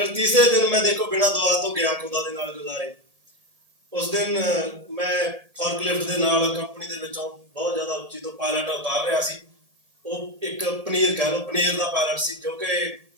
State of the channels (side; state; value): left; late; 1.7 ms